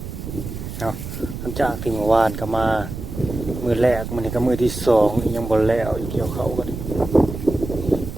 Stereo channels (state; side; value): noise; right; rumble, 8 dB below the sound